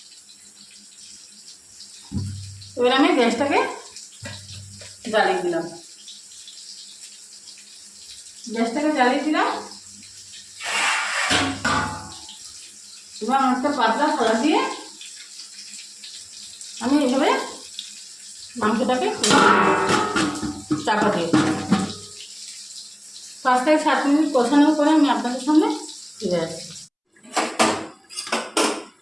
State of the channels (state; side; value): identical; both; correlation 1.00